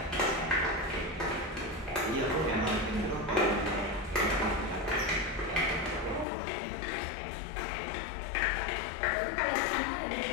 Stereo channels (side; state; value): right; drops out; at 6.2 s